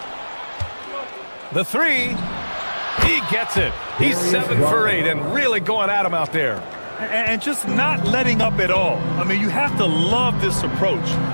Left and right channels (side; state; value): both; inverted; correlation -1.00